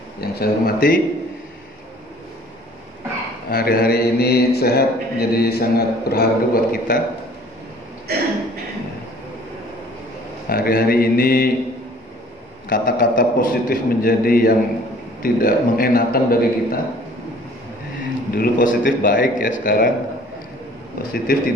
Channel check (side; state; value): both; normal; correlation 0.53